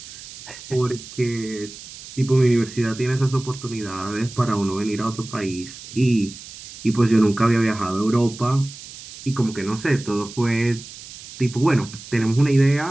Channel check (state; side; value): noise; right; hiss, 15 dB below the sound